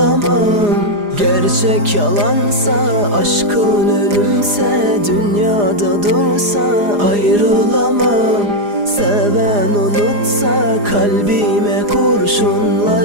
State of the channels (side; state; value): left; late; 4.9 ms